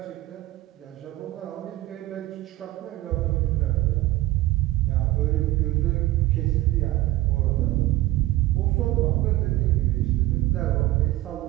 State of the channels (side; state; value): left; quieter; 16.7 dB